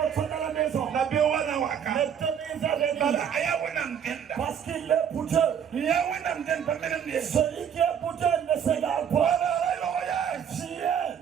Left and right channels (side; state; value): left; quieter; 8.2 dB